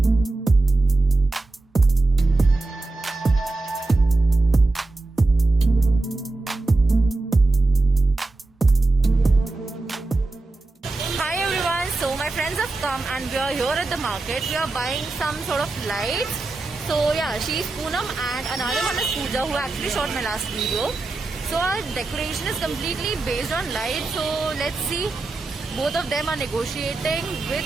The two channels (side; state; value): left; quieter; 3.3 dB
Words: So my friends have come and we are here at the market. We are buying some sort of lights. So yeah, she's Poonam and another one is Pooja who actually shot my last video. So our decoration is completely based on lights. So let's see. Both of them are negotiating